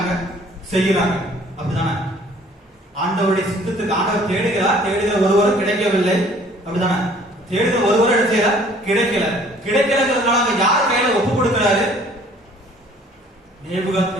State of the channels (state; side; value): normal; both; correlation 0.55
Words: செய்கிறாங்க. அப்படிதானே? ஆண்டவருடைய சித்தத்துக்கு ஆண்டவர் தேடுகிற ஒருவரும் கிடைக்கவில்லை. அப்படிதானே? தேடுகிற ஒருவரும் என்ன செய்யற? கிடைக்கலங்கிறதுனால யார் கையில ஒப்பு கொடுக்கிறாரு?